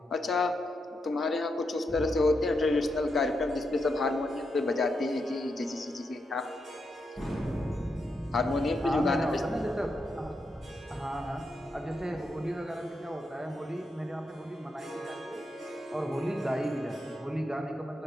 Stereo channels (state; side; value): normal; both; correlation 0.84